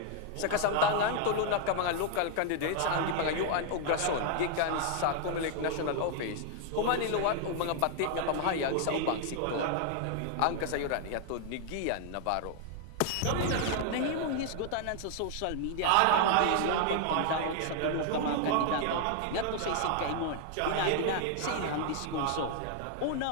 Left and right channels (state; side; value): different; both; correlation 0.00